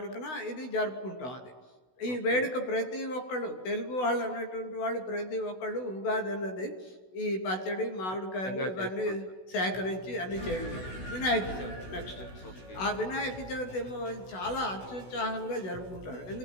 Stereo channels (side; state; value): right; late; 16 ms